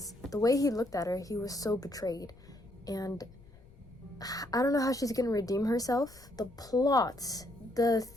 the way he looked at her, he was so betrayed. And I don't know how she's gonna redeem herself. The plot, the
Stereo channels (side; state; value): left; noise; rumble, 24 dB below the sound